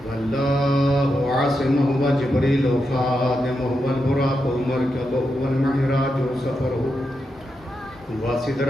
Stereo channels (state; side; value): normal; both; correlation 0.86